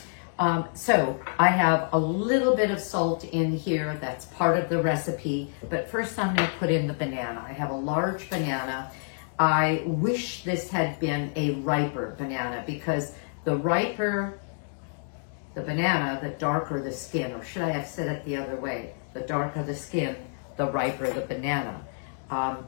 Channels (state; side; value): silent; right; digital silence